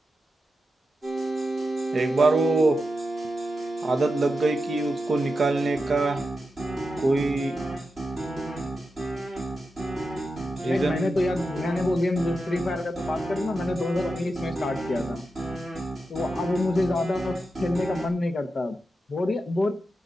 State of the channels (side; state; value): both; normal; correlation 0.89